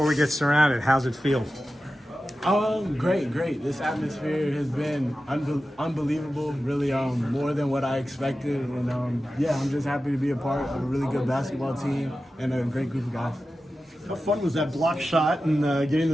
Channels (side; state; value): both; normal; correlation 0.93